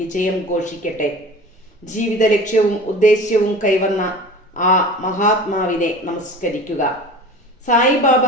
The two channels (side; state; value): both; normal; correlation 0.38